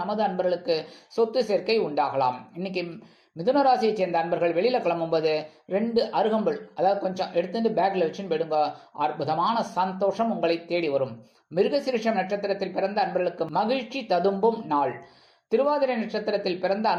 நமது அன்பர்களுக்கு சொத்து சேர்க்கை உண்டாகலாம். இன்னைக்கு மிதுன ராசியை சேர்ந்த அன்பர்கள் வெளியில கிளம்பும்போது 2 அருகம்புல் அதாவது கொஞ்சம் எடுத்துட்டு பேக்ல வச்சுன்னு போயிடுங்க. அற்புதமான சந்தோஷம் உங்களை தேடி வரும். மிருகசீரிஷம் நட்சத்திரத்தில் பிறந்த அன்பர்களுக்கு மகிழ்ச்சி ததும்பும் நாள். திருவாதிரை நட்சத்திரத்தில் பிறந்த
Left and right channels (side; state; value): both; identical; correlation 1.00